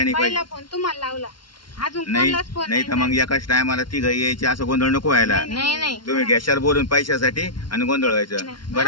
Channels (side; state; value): right; late; 0.72 ms